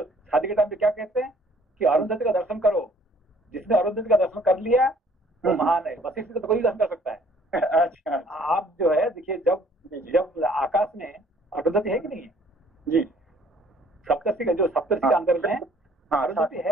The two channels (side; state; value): both; normal; correlation 0.58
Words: शादी के टाइम पे क्या कहते हैं कि अरुंधति का दर्शन करो, जिसने अरुंधति का दर्शन कर लिया वो महान है, वशिष्ठ का तो कोई दर्शन कर सकता है। अच्छा, आप जो है देखिए, जब आकाश में अरुंधति है कि नहीं है जी, सप्तर्षि का जो सप्तर्षि का अंदर में अरुंधति